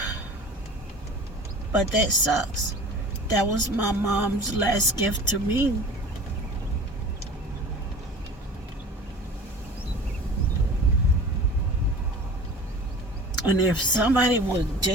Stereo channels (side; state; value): both; normal; correlation 0.40